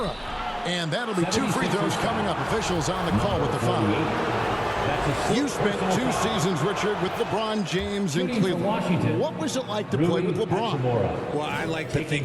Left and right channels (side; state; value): both; identical; correlation 1.00